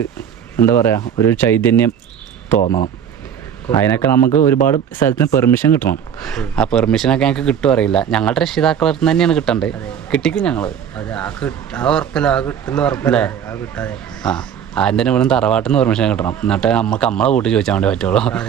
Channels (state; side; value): quieter; left; 8.5 dB